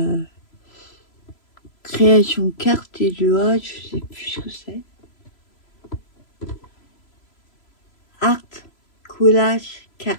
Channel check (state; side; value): late; right; 3.0 ms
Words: création carte et de A, je sais plus ce que c'est. Art, collage, carte,